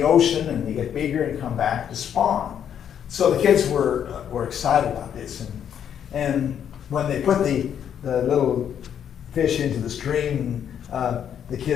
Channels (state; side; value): quieter; right; 8.9 dB